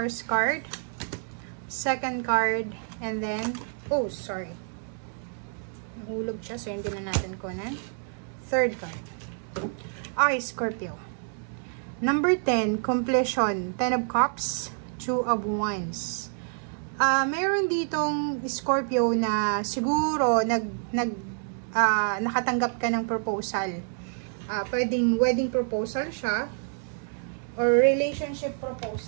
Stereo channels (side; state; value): left; silent; 59 dB below the other